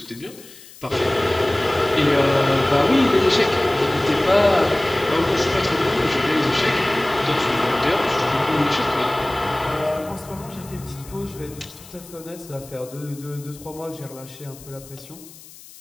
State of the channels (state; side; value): noise; left; hiss, 20 dB below the sound